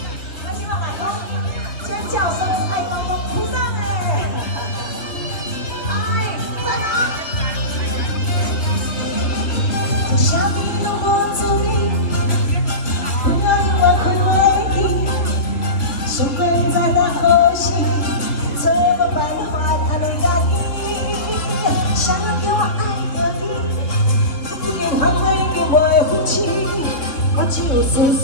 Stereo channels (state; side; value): late; right; 3.1 ms